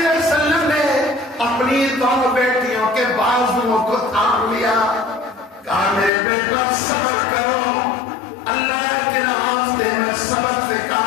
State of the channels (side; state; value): right; drops out; at 6.1 s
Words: وسلم نے اپنی دونوں بیٹیوں کے بازوؤں کو تھام لیا. کہا میرے بیٹا صبر کرو, اللہ کے راستے میں صبر سے